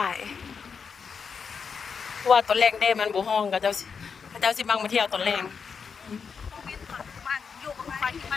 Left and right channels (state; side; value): quieter; right; 6.0 dB